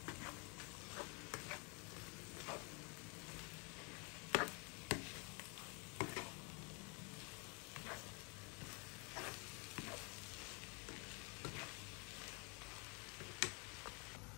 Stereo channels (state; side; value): quieter; right; 33.5 dB